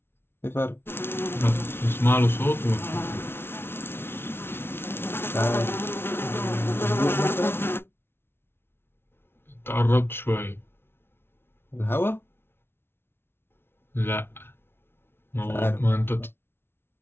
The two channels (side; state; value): right; late; 0.11 ms